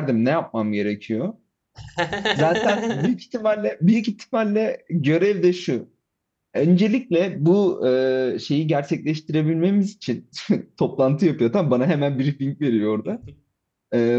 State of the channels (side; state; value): both; identical; correlation 1.00